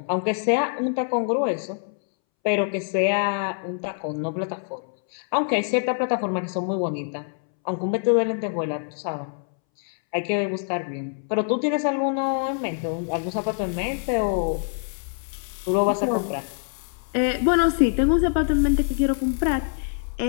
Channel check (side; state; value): right; silent; 62 dB below the other